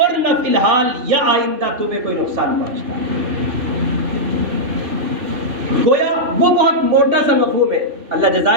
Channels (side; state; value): left; late; 3.1 ms